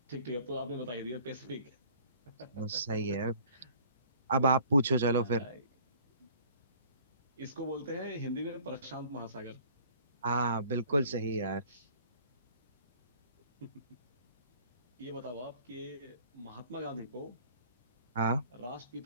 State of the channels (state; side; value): inverted; both; correlation -0.52